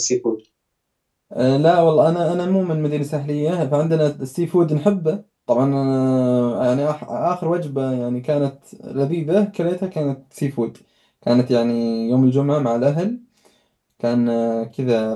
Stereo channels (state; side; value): identical; both; correlation 1.00